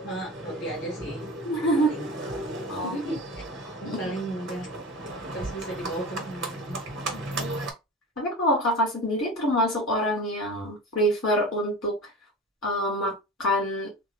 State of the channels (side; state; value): both; normal; correlation 0.31